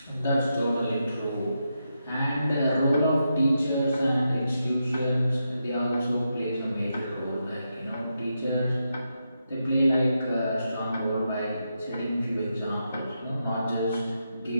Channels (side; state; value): both; inverted; correlation -0.85